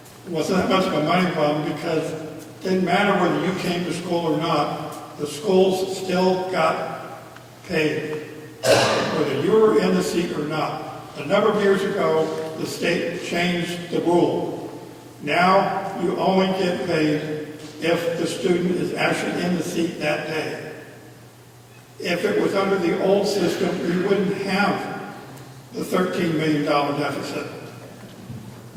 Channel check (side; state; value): both; identical; correlation 1.00